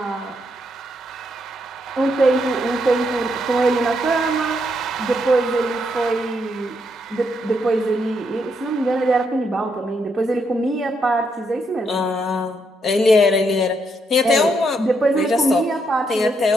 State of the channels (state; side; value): normal; both; correlation 0.77